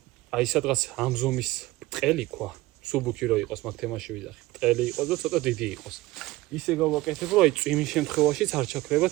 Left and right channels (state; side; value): quieter; left; 18.9 dB